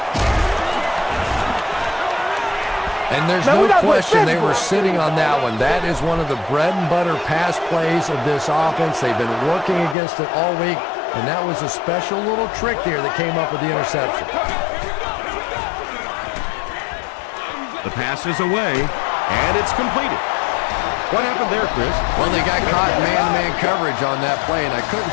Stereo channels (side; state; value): right; drops out; at 10.0 s